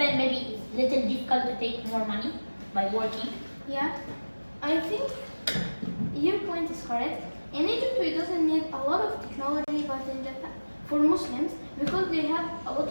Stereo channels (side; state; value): both; inverted; correlation -1.00